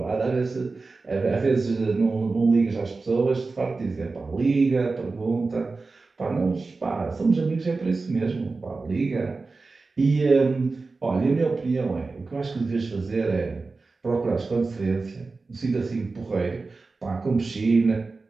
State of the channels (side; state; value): left; quieter; 3.9 dB